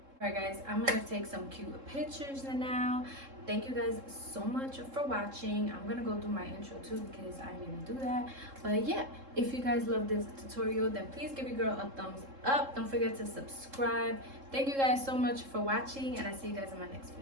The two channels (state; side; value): late; left; 3.7 ms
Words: Alright guys, I'm gonna take some cute pictures now. Thank you guys so much for watching. I'm gonna go do my intro too because I need to do that. But yeah, if you guys love this tutorial, then please give your girl a thumbs up. Don't forget to subscribe. Thank you guys so much for watching, and I'll see you guys in my next